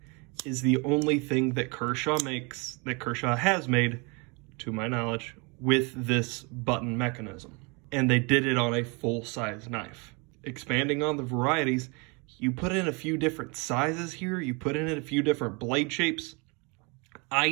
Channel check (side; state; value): left; quieter; 30.6 dB